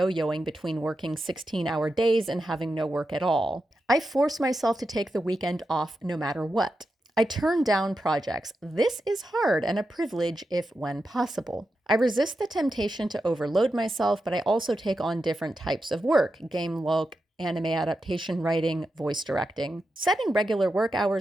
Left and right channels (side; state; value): both; normal; correlation 0.89